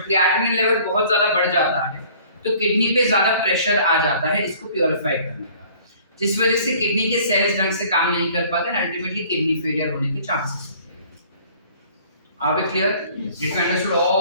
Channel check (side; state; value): both; inverted; correlation -0.53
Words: क्रिएटिनिन लेवल बहुत ज्यादा बढ़ जाता है, तो किडनी पे ज्यादा प्रेशर आ जाता है इसको प्योरीफाई करने का, जिस वजह से किडनी के सेल्स ढंग से काम नहीं कर पाते, अल्टीमेटली किडनी फेलियर होने के चांसेस होते हैं. Are we clear? Did you understood